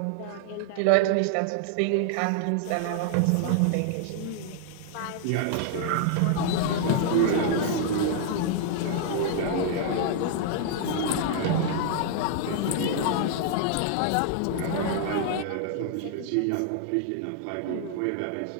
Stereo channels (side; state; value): both; different; correlation -0.01